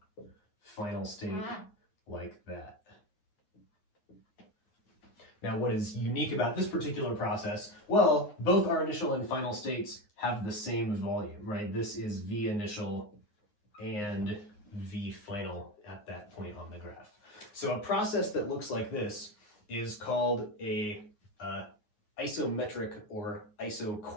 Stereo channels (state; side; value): late; right; 9.5 ms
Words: final state like that. Now, what is unique about this particular process? Well, both our initial and final states have the same volume, right? This is V initial and V final at that point on the graph. So a process that looks like this is called a isometric or